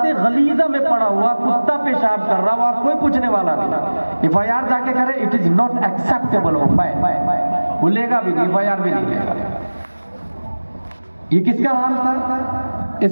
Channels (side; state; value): both; inverted; correlation -1.00